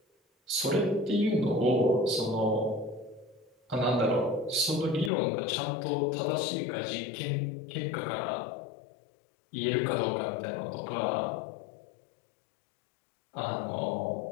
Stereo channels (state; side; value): drops out; right; at 5.1 s